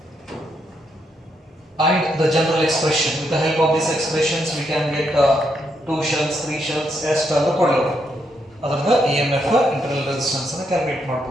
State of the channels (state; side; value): normal; both; correlation 0.78